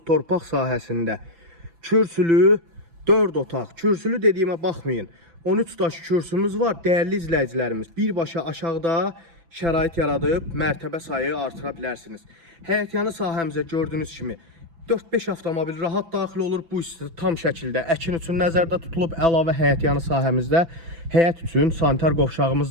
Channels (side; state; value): left; late; 6.0 ms